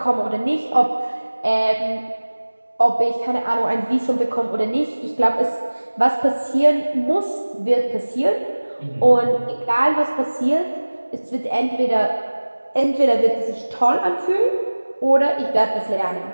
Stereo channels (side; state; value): both; inverted; correlation -1.00